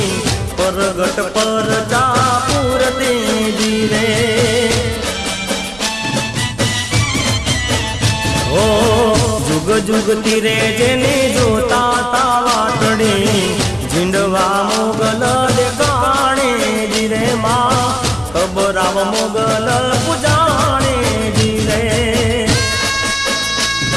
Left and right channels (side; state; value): right; noise; hum, 21 dB below the sound